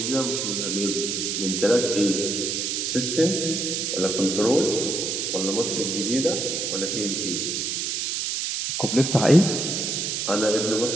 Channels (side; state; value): right; noise; hiss, 1 dB below the sound